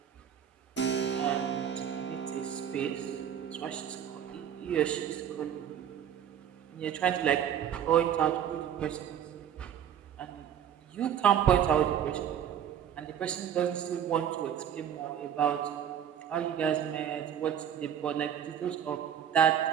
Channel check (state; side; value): quieter; left; 9.2 dB